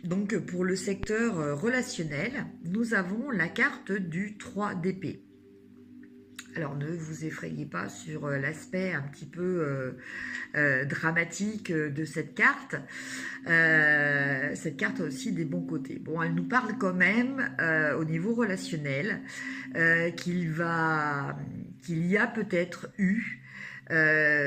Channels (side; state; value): both; identical; correlation 1.00